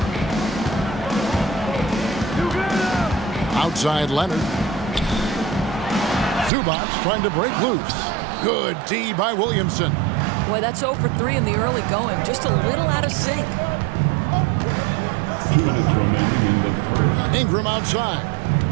Outside Leonard. Zubac trying to break loose. Good D by Williamson. Boy, that's 0 for 3 in the early going. Just a little out of sync. 2 minutes remaining in the first. Ingram outside.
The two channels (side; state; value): left; drops out; at 6.5 s